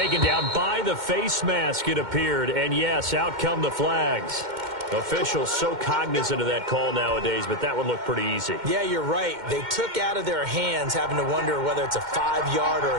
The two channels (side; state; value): left; late; 2.1 ms